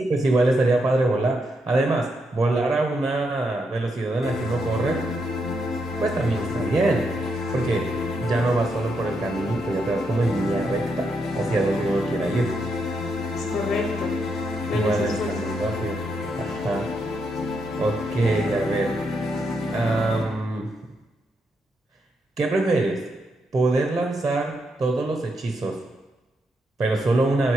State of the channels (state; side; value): normal; both; correlation 0.81